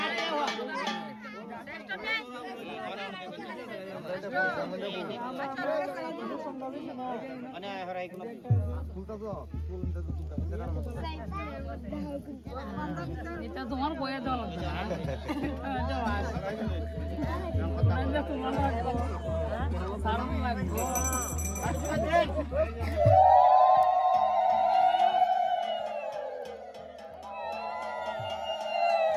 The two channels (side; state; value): both; identical; correlation 1.00